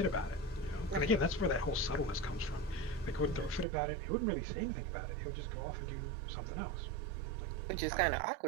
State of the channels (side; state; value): left; drops out; at 3.7 s